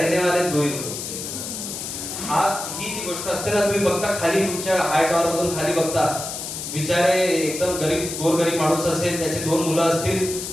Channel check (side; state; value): left; noise; hiss, 7 dB below the sound